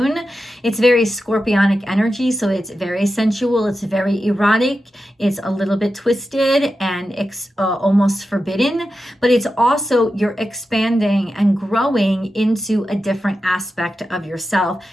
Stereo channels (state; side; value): normal; both; correlation 0.91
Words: It's very scorpionic energy, so it's very sensual. It's very erotic. It's a little bit twisted and almost forbidden, but it's also you're expanding and growing into a different aspect of yourself.